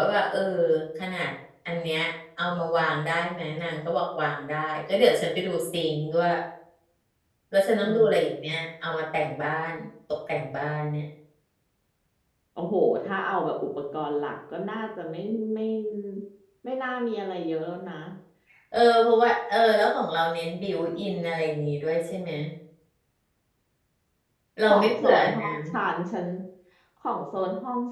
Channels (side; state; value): both; identical; correlation 1.00